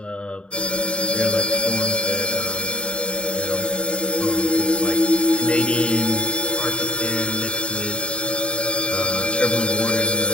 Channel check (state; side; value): late; right; 0.055 ms